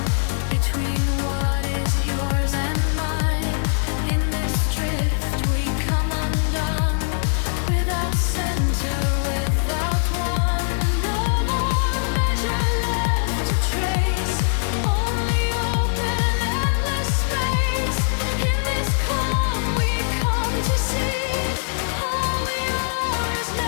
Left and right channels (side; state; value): right; silent; 64 dB below the other